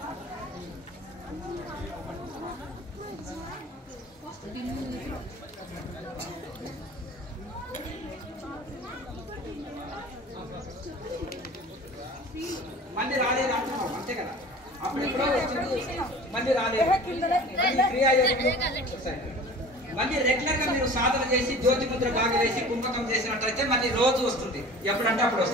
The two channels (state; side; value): normal; both; correlation 0.41